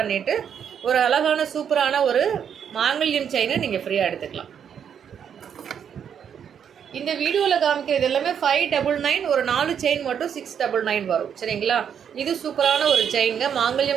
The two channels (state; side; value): quieter; left; 8.1 dB